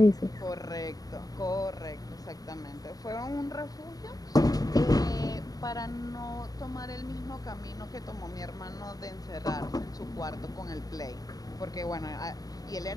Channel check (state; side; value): late; right; 0.18 ms